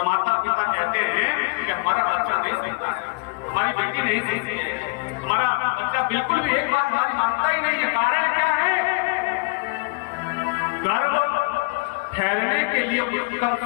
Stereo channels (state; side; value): quieter; right; 29.8 dB